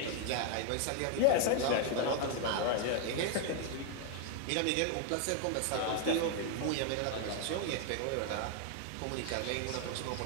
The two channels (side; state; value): both; different; correlation 0.00